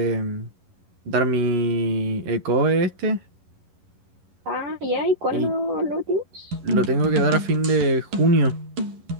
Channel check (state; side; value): late; left; 11 ms